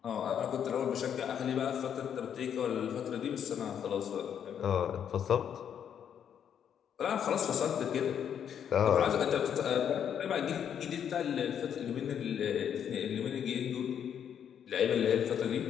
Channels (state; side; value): quieter; right; 8.7 dB